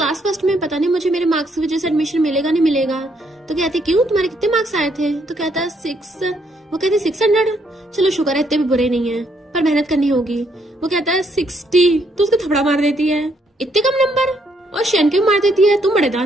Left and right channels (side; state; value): both; normal; correlation 0.72